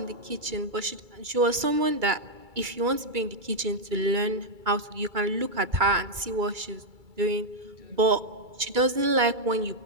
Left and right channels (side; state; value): left; late; 2.3 ms